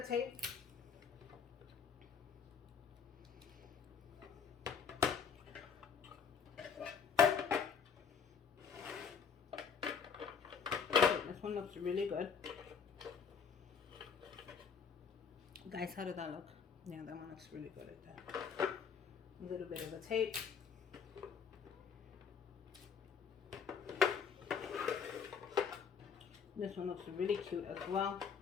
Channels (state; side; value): quieter; right; 6.5 dB